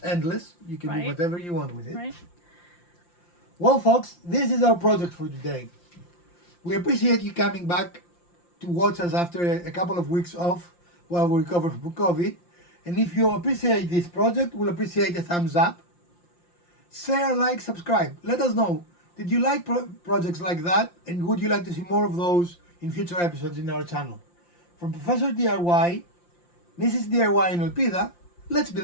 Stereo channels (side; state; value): right; late; 5.7 ms